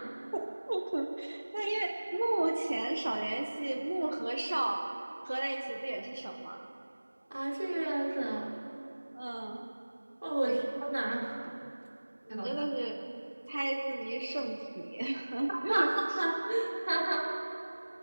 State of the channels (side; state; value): both; inverted; correlation -1.00